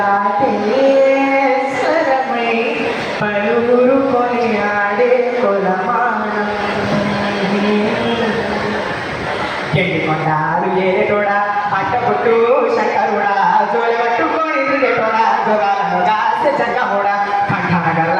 స్వరమై పలువురు కొని ఆడే కొలమానం కొండాలు ఏరేటోడా అట్టపుట్టు శంకరుడా జోలి పట్టుకొని తిరిగేటోడా జోగాలను దాసే జంగమోడా కంఠాన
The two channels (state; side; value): identical; both; correlation 1.00